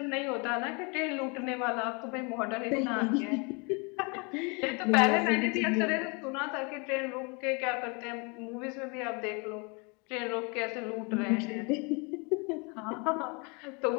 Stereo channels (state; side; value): quieter; right; 31.7 dB